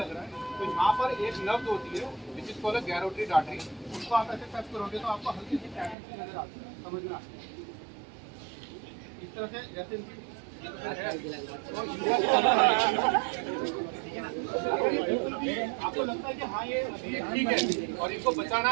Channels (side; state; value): left; drops out; at 6.0 s